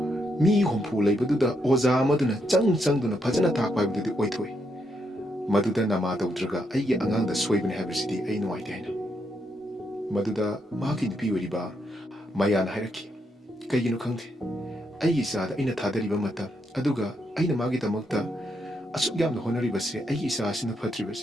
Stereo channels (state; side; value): normal; both; correlation 0.79